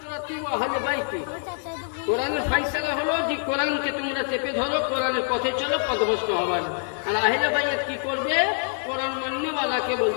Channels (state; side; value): silent; right; 61 dB below the other